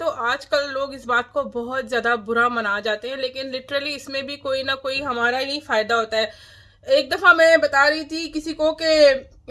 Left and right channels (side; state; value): both; identical; correlation 1.00